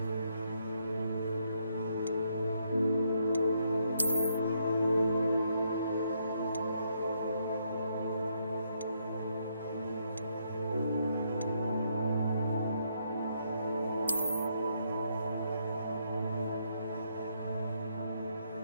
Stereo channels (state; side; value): inverted; both; correlation -0.75